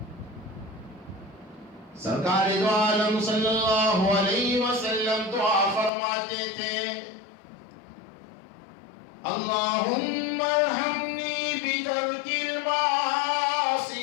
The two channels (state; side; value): drops out; right; at 5.9 s